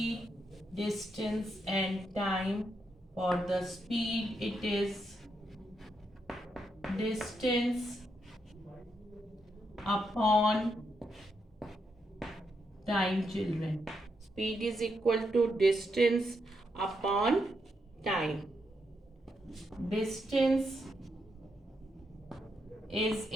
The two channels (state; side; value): normal; both; correlation 0.81